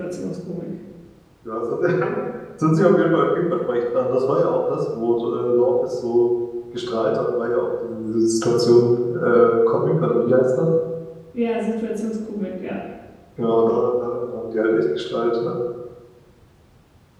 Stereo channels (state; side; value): identical; both; correlation 1.00